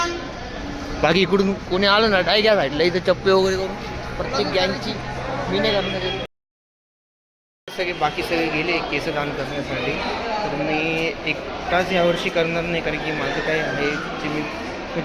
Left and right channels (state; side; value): identical; both; correlation 1.00